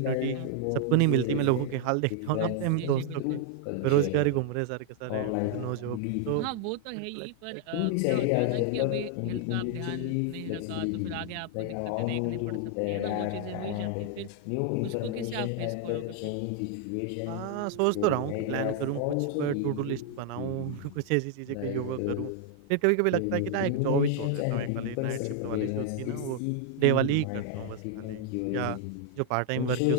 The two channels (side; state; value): both; different; correlation 0.00